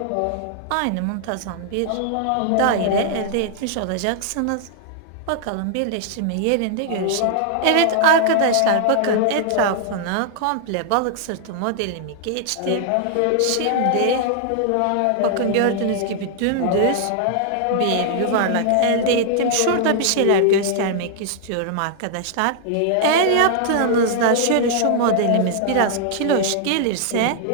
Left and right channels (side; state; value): both; different; correlation -0.01